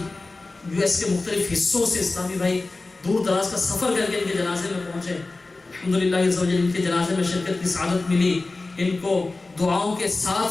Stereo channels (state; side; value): quieter; right; 3.4 dB